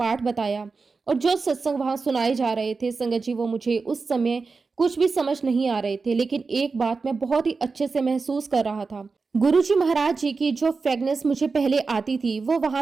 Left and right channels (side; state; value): left; quieter; 4.4 dB